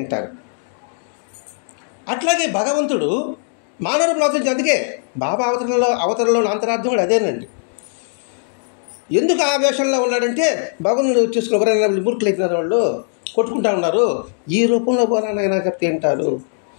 అట్లాగే భగవంతుడు మానవులు అవతరించి. అందుకే బాబా అవతరణలో అంతరార్థం కూడా అదేనండి. ఎందుకు ఆ వేషంలో ఉన్నాడంటే, భగవంతుడు చూసుకుని ఎవరైనా మూర్ఖులు అయిపోయినారు, వాళ్ళు కొట్టుకుంటా ఉన్నారు, ఈ రూపంలో పోరానైనా చెప్తే వింటారు.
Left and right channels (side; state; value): right; silent; digital silence